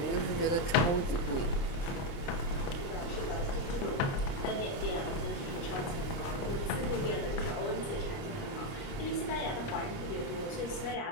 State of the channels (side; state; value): right; late; 29 ms